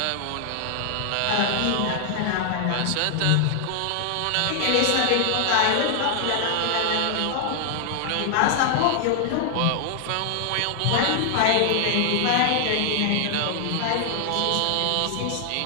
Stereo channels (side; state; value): both; different; correlation 0.00